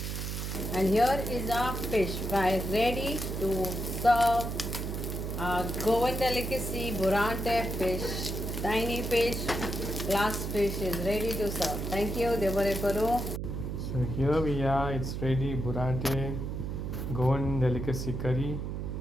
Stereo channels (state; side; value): noise; right; hum, 4 dB below the sound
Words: And here is our fish fry ready to serve. Our Goan Delicacy Burrante fish, tiny fish, glass fish is ready to serve. Thank you, Devareparu. So here we are, it's ready, Burrante, Goan Delicacy curry,